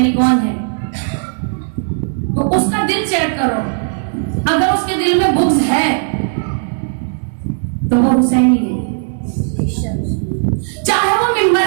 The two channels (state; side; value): silent; left; digital silence